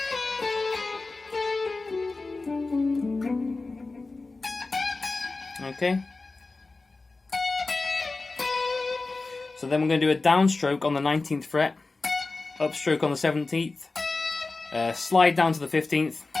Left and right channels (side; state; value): right; quieter; 3.6 dB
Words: Okay, so then we're going to do a downstroke on the 19th fret, upstroke on the 17th, slide down to the 15th,